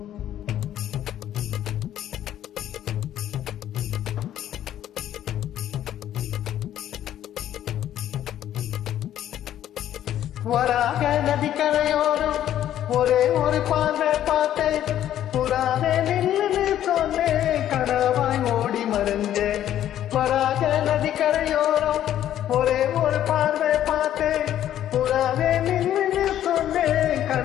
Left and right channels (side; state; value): right; quieter; 11.5 dB